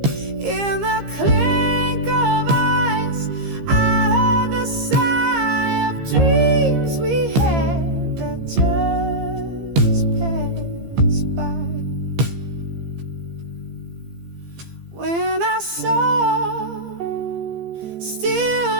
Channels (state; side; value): late; left; 15 ms